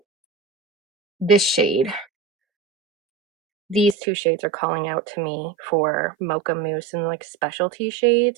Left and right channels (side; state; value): left; drops out; at 4.0 s